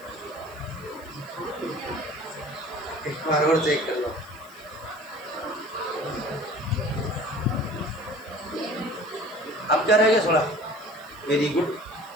एक बार और चेक कर लो। अब क्या रहेगा? 16। वेरी गुड,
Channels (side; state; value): left; noise; hiss, 24 dB below the sound